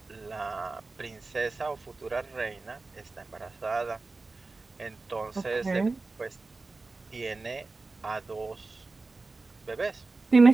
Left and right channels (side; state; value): left; quieter; 3.6 dB